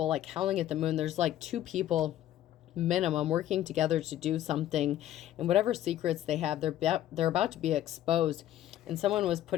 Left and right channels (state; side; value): quieter; right; 12.5 dB